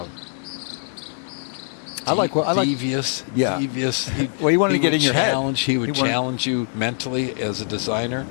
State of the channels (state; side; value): silent; right; 64 dB below the other